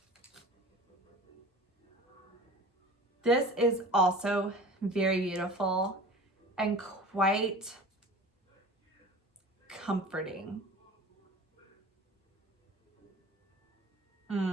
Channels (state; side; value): normal; both; correlation 0.39